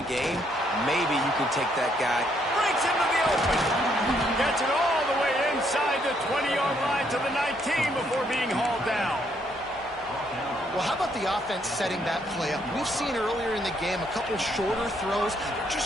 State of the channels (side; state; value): both; normal; correlation 0.71